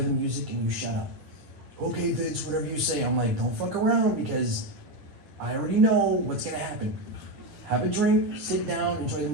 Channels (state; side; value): late; left; 9.3 ms